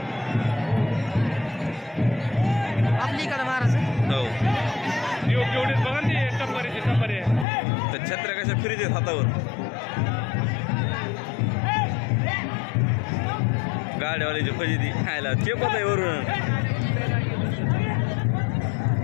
आपली इकडे महाराज हो एवढे बघा ते टप्पारे तर छत्र्या कशा फिरीत आहेत हातावर. गाड्यावाल्याची फजिती खायला चेपत आहे वरून.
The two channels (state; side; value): drops out; right; at 7.5 s